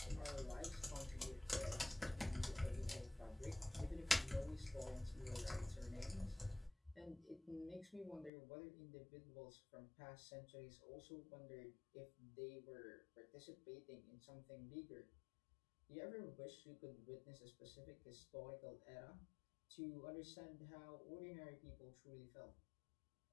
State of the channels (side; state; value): right; drops out; at 8.3 s